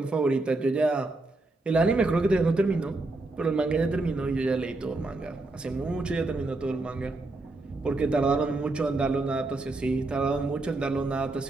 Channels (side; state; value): left; quieter; 3.1 dB